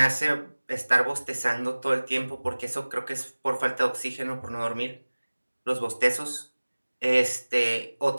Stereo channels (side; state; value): both; inverted; correlation -1.00